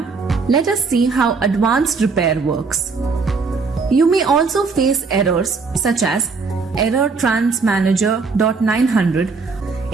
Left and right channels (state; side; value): quieter; left; 4.6 dB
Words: let us see how advanced repair works. You may also face errors such as error transmanager.900.